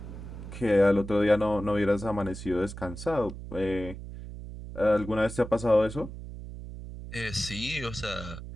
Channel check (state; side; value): noise; right; hum, 11 dB below the sound